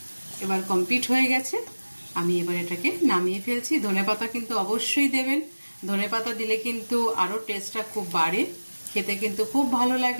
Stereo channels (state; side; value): inverted; both; correlation -1.00